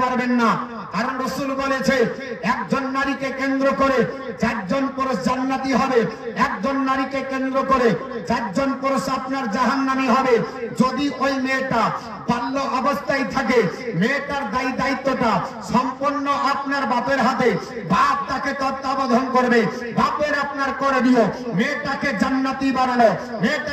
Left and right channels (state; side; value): identical; both; correlation 1.00